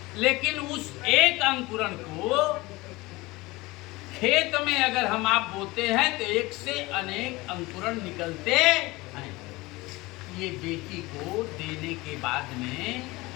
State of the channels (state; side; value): quieter; right; 21.5 dB